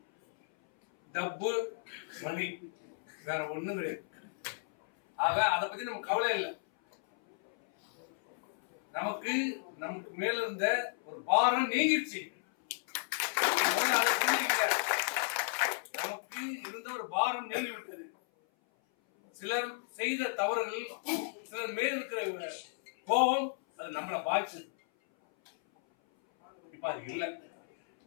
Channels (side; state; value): right; silent; 55 dB below the other